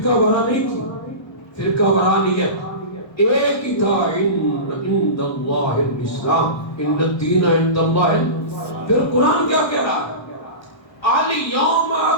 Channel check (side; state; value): right; late; 1.3 ms